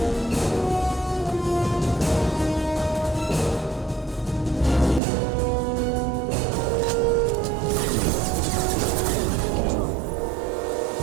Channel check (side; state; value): left; drops out; at 5.0 s